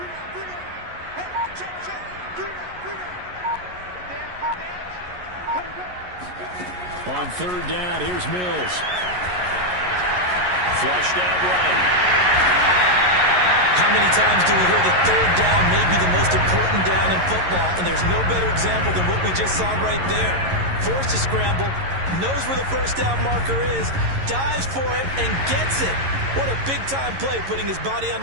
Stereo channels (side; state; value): left; late; 11 ms